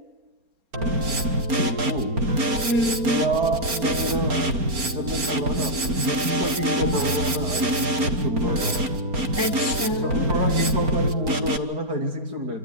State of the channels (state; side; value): late; left; 4.4 ms